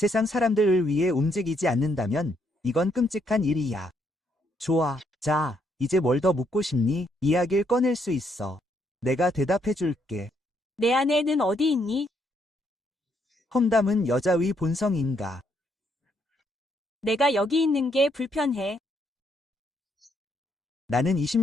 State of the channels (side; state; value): both; normal; correlation 0.73